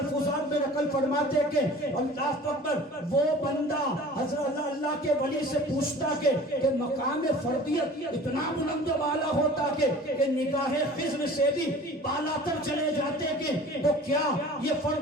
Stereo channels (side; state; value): both; normal; correlation 0.43